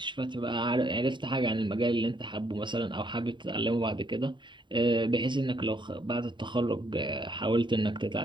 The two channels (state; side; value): late; left; 0.23 ms